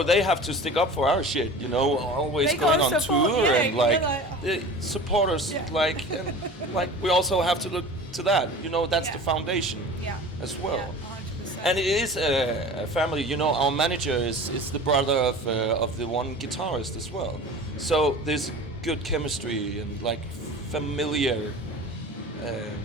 they have to stick up for our shit, you know, always They going gotta on support, tour yeah, and like, you're like, support us, Yeah. like, and like we also have to look to that, you know, that's the Yeah. foundation Yeah. as well. Yeah, 100%. And it is a family, you know. Our manager is the brother of the one guitarist as well, so there's good chemistry and like familiar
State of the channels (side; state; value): both; normal; correlation 0.38